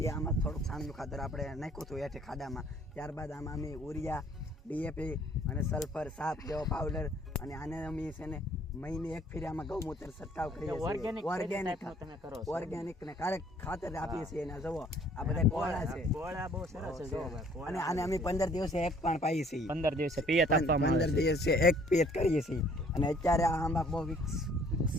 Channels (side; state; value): both; normal; correlation 0.58